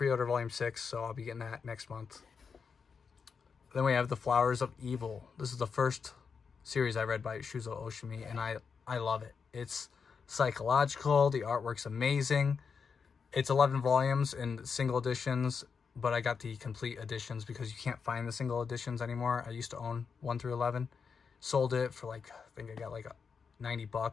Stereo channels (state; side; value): quieter; right; 5.8 dB